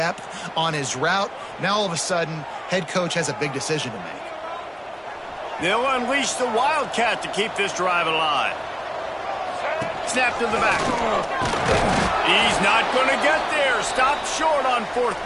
on his route. Now, all of a sudden, head coach has a big decision to make. They'll unleash the Wildcat to keep this drive alive. Snap to the back. He's not going to get there. Stopped short on 4th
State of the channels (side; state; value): both; identical; correlation 1.00